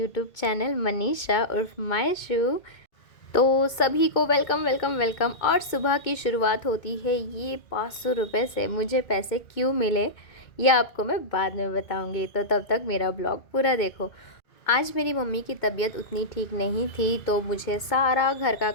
channel Manisha उर्फ माय शू। तो सभी को वेलकम वेलकम वेलकम। और सुबह की शुरुआत होती है ये 500 रुपये से। मुझे पैसे क्यों मिले ये आपको मैं बाद में बताऊंगी, तो तब तक मेरा ब्लॉग पूरा देखो। आज मेरी मम्मी की तबीयत उतनी ठीक नहीं थी, तो मुझे सारा घर का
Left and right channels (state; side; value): late; right; 2.2 ms